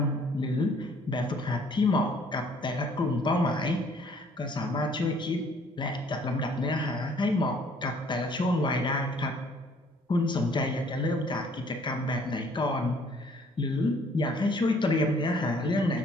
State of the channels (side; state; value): both; normal; correlation 0.59